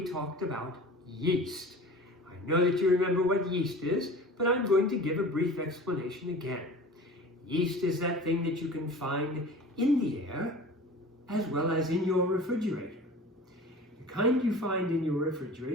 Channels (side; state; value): both; normal; correlation 0.40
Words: talked about yeast. I know that you remember what yeast is, but I'm going to give a brief explanation again. Yeast is that thing that you can find in the air as well as in your refrigerator. The kind you find in your